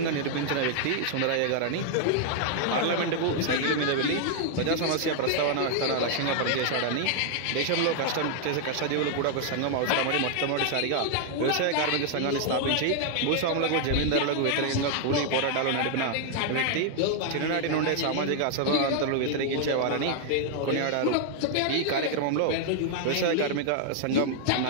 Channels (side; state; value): both; different; correlation 0.00